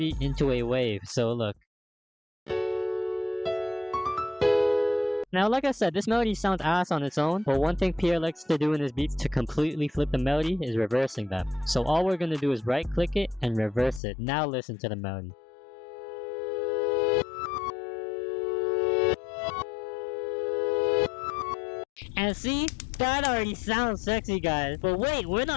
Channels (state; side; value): drops out; right; at 14.0 s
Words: into a wave. So look. Now like I said, this melody sounds ass on its own, but one thing Pierre likes to do in his beats to completely flip the melody is reversing them. So all we're going to do is right click it and reverse it. Now listen to the melody. And see? That already sounds sexy, guys. But wait, we're